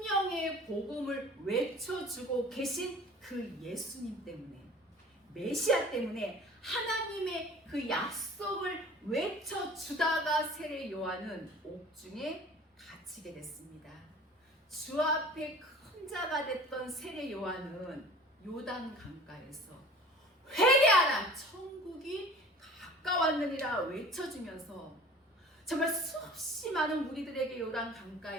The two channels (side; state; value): both; normal; correlation 0.45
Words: 복음을 외쳐주고 계신 그 예수님 때문에, 메시아 때문에 하나님의 그 약속을 외쳐주다가 세례 요한은 옥중에 갇히게 됐습니다. 주 앞에 큰 자가 됐던 세례 요한은 요단 강가에서 회개하라, 천국이 가까웠느니라 외쳐주면서 정말 수없이 많은 무리들에게 요단